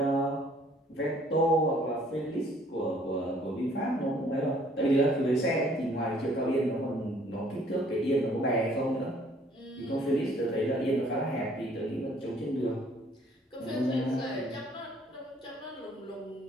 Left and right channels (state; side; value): normal; both; correlation 0.60